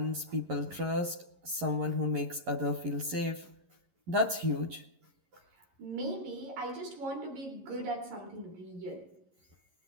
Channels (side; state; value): left; late; 11 ms